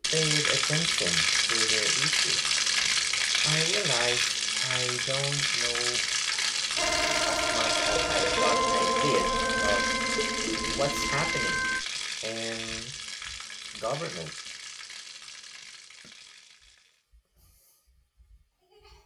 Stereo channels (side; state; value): both; identical; correlation 1.00